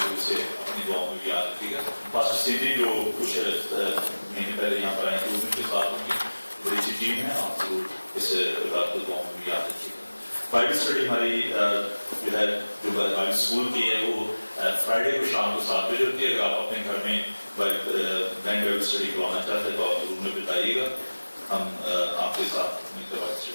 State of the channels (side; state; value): both; inverted; correlation -1.00